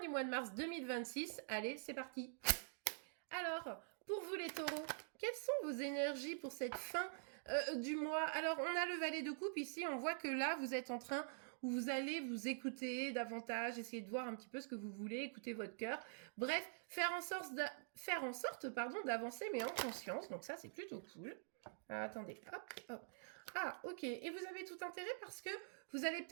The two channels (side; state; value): left; silent; digital silence